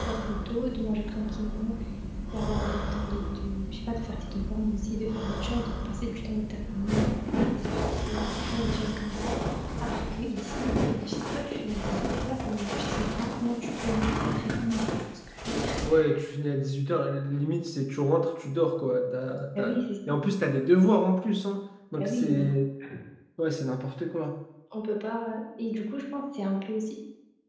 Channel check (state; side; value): identical; both; correlation 1.00